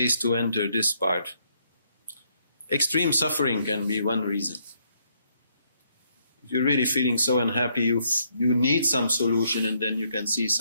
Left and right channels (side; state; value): both; inverted; correlation -0.72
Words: to enter this part. Extreme suffering can be one reason. If you're really feeling so unhappy, you need some solution, and then you can see